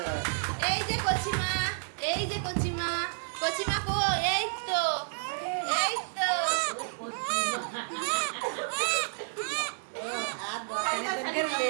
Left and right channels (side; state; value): left; silent; 58 dB below the other